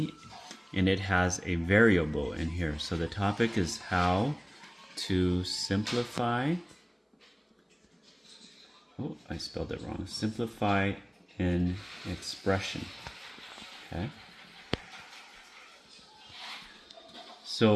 and it has a variable in here. So the topic is how to simplify, oh, I spelled it wrong, simplify an expression, okay?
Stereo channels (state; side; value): identical; both; correlation 1.00